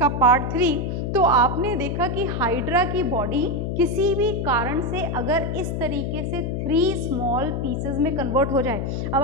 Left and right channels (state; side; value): noise; left; hum, 2 dB below the sound